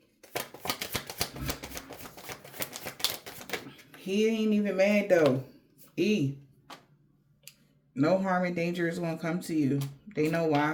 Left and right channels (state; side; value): identical; both; correlation 1.00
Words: He ain't even mad though. E. No harm and danger is going to come to you. They know